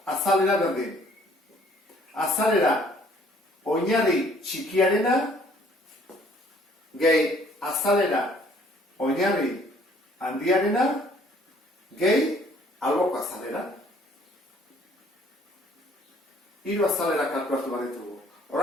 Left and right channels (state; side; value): normal; both; correlation 0.60